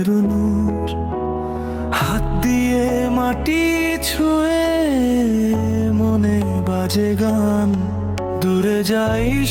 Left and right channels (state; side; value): identical; both; correlation 1.00